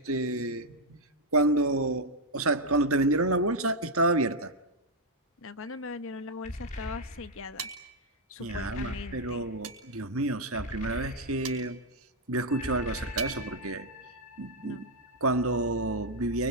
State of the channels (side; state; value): both; normal; correlation -0.01